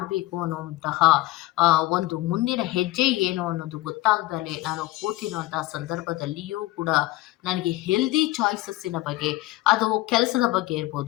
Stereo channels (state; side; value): quieter; right; 18.3 dB